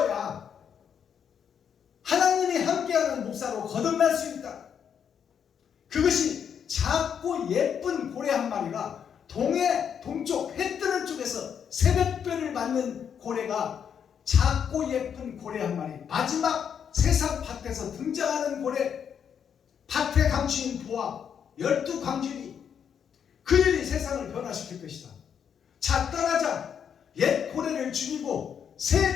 하나님이 함께하는 목사로 거듭날 수 있다. 그것이 작고 예쁜 고래 한 마리가 동쪽 해 뜨는 쪽에서 새벽별을 맞는 고래가 작고 예쁜 고래 한 마리, 마지막 세상 밭에서 등장하는 고래, 밭의 강주인 보아 12광주리, 그 일이 세상을 변화시킬 것이다. 자, 떠나자. 옛 고래를 죽이고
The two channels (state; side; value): quieter; right; 7.9 dB